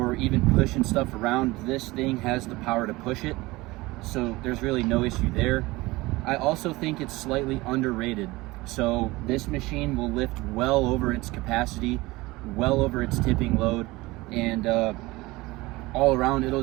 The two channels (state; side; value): quieter; left; 20.9 dB